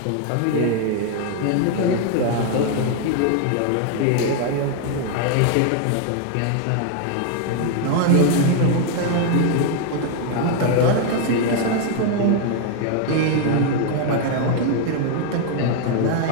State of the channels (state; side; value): different; both; correlation 0.01